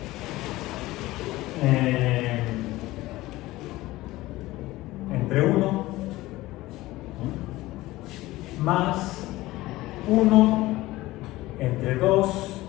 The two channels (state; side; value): quieter; right; 18.1 dB